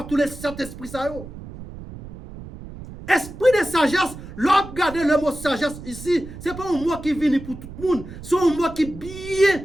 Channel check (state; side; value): noise; right; rumble, 13 dB below the sound